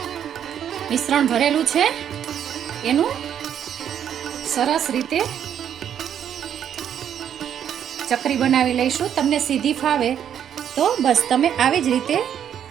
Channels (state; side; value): quieter; left; 9.3 dB